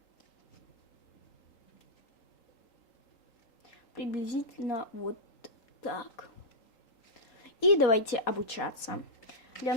Приблизительно вот так. И давайте обучаться. Для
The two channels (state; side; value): late; right; 3.8 ms